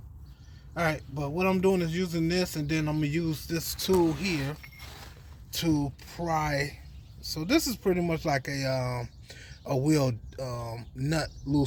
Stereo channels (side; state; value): both; identical; correlation 1.00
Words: Alright, but what I'm doing is using this, and then I'm gonna use this tool here to pry. So this is pretty much like a wheel nut